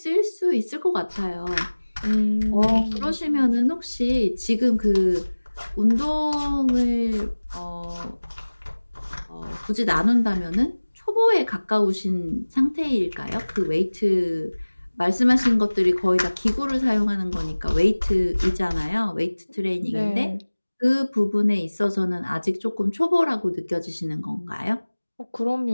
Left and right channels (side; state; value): both; inverted; correlation -1.00